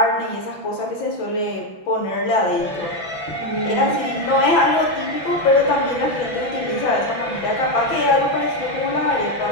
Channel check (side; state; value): right; late; 6.0 ms